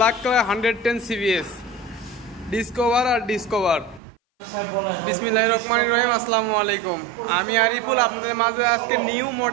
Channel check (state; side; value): drops out; left; at 4.0 s